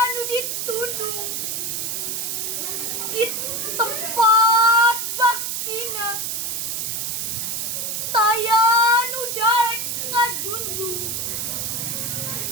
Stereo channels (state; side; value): noise; right; hiss, 2 dB below the sound